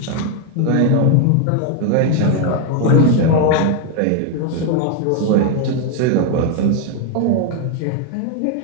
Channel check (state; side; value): different; both; correlation 0.01